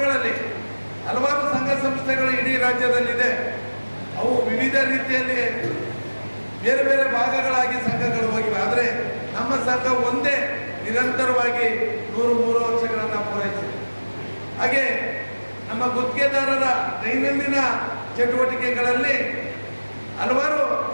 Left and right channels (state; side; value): inverted; both; correlation -1.00